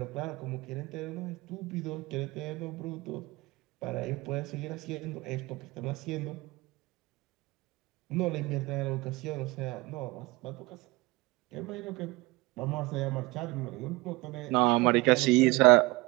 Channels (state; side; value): quieter; left; 22.6 dB